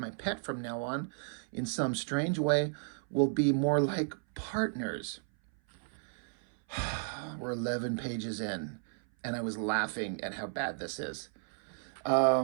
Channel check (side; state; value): left; silent; 55 dB below the other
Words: pet from now on. In some strange way, we'll be more like partners." We're 11 pages in, and I was laughing at how bad this is.